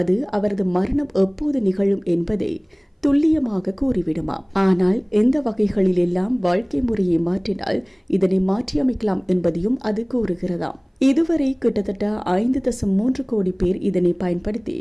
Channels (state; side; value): identical; both; correlation 1.00